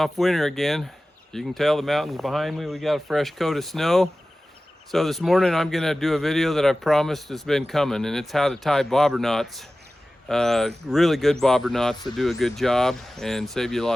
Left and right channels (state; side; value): normal; both; correlation 0.96